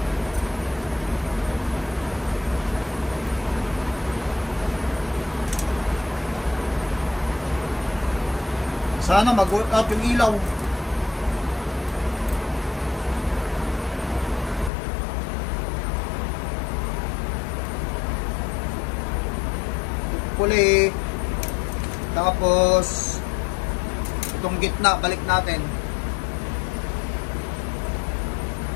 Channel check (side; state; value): right; drops out; at 14.7 s